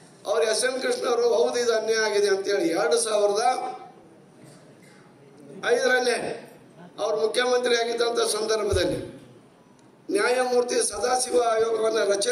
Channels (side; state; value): both; identical; correlation 1.00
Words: ಅವ್ರು SM ಕೃಷ್ಣವರು ಹೌದು ಇದು ಅನ್ಯಾಯ ಆಗಿದೆ ಅಂತೇಳಿ 2005 ಅವರು ಮುಖ್ಯಮಂತ್ರಿ ಆಗಿದ್ದಂಥ ಸಂದರ್ಭದಲ್ಲಿ ನ್ಯಾಯಮೂರ್ತಿ ಸದಾಶಿವ ಆಯೋಗವನ್ನು